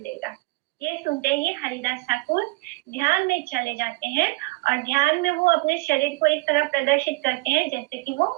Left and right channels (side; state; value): left; quieter; 23.5 dB